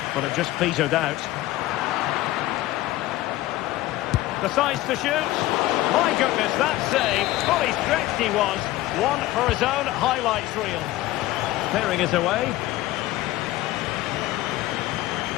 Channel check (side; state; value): right; quieter; 16.5 dB